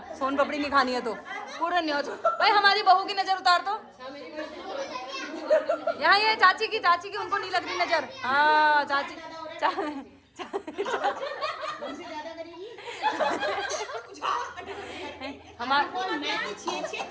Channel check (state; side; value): identical; both; correlation 1.00